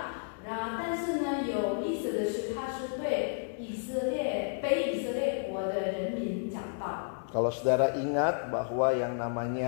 Kalau saudara ingat bahwa yang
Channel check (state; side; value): silent; right; 57 dB below the other